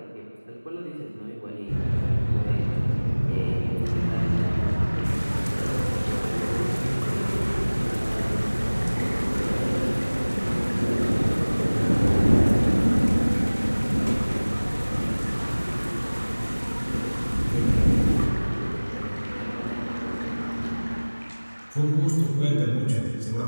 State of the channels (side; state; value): both; inverted; correlation -1.00